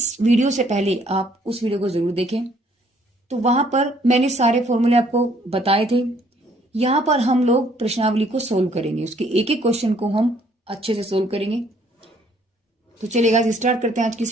वीडियो से पहले आप उस वीडियो को जरूर देखें। तो वहां पर मैंने सारे फॉर्मूले आपको बताए थे। यहां पर हम लोग प्रश्नावली को सोल्व करेंगे, उसके एक एक क्वेश्चन को हम अच्छे से सोल्व करेंगे। तो चलिए गाइस स्टार्ट करते हैं आज की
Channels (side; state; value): both; normal; correlation 0.64